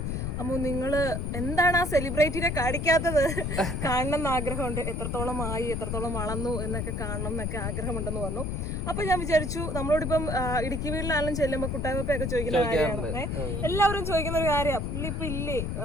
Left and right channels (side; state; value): left; noise; rumble, 2 dB below the sound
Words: അമ്മു നിങ്ങൾ എന്താണ് ആ സെലിബ്രിറ്റിനെ കാണിക്കാത്തത്? കാണണം എന്ന് ആഗ്രഹമുണ്ട്, എത്രത്തോളം ആയി, എത്രത്തോളം വളർന്നു എന്നൊക്കെ കാണണം എന്നൊക്കെ ആഗ്രഹമുണ്ടെന്ന് പറഞ്ഞു. അപ്പോൾ ഞാൻ വിചാരിച്ചു നമ്മളോടിപ്പം ഇടുക്കി വീട്ടിലാണെങ്കിലും ചെല്ലുമ്പോൾ കുട്ടായ്മപ്പൊക്കെ ചോദിക്കുന്ന കാര്യമാണ്, എല്ലാവരും ചോദിക്കുന്ന ഒരു കാര്യമാണ്, പുള്ളി ഇപ്പൊ ഇല്ലേ,